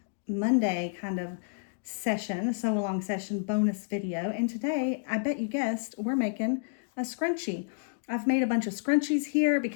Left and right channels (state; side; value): silent; right; digital silence